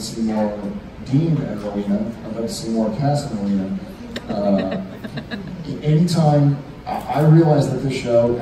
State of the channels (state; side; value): identical; both; correlation 1.00